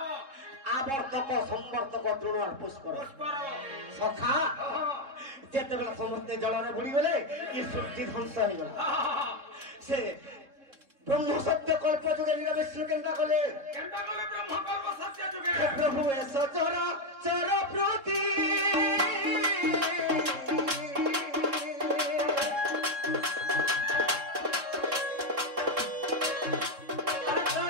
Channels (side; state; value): left; late; 3.7 ms